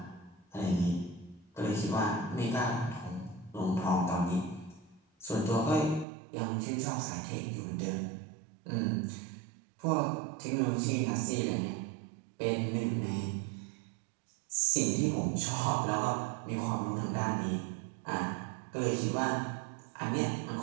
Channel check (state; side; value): drops out; left; at 6.1 s